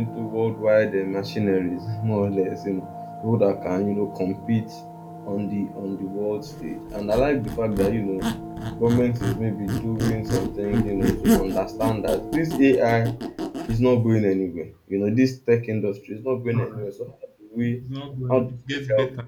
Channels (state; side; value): identical; both; correlation 1.00